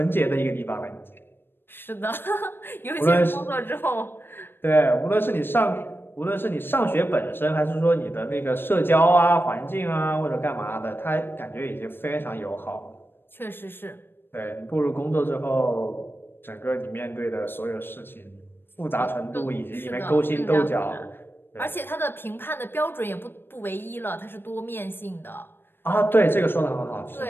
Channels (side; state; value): right; late; 0.10 ms